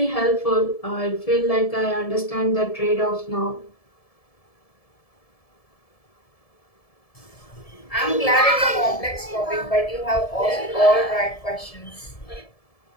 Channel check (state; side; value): late; right; 1.7 ms